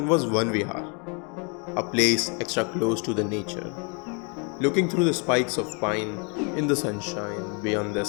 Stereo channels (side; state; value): right; quieter; 35.2 dB